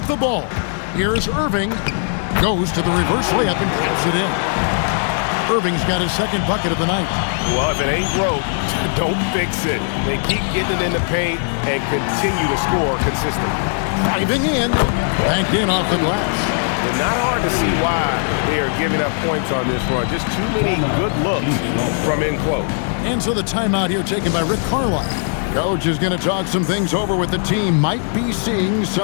the ball. Here's Irving. Goes to the reverse layup and taps it in. Irving's got his second bucket of the night. Well, if it ain't broke, don't fix it. They keep getting it in the paint and continue to score consistently. Driving in. Banked in off the glass. It's not hard to see why they are giving up points on this run. Just too many good looks from in close. And so the timeout here taken by Rick Carlisle. Coach is going to talk some things over with the team. Might be seeing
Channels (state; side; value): silent; right; 67 dB below the other